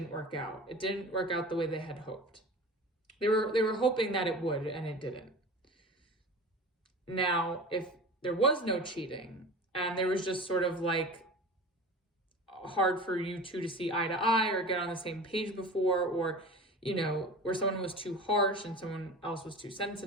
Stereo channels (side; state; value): both; normal; correlation 0.35